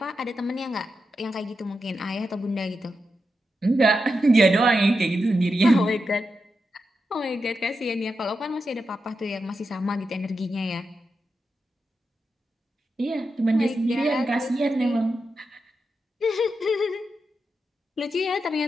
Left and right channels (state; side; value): normal; both; correlation 0.87